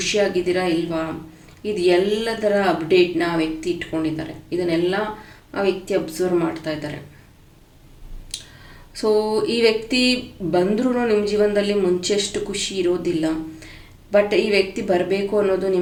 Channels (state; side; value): identical; both; correlation 1.00